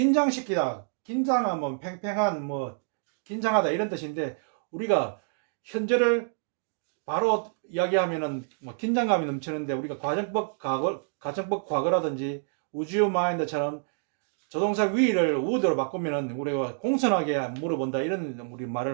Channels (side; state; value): left; silent; digital silence